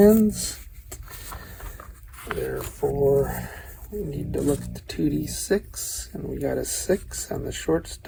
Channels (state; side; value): identical; both; correlation 1.00